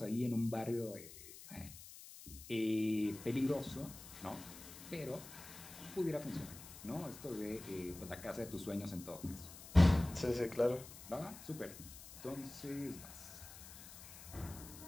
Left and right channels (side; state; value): left; noise; hiss, 15 dB below the sound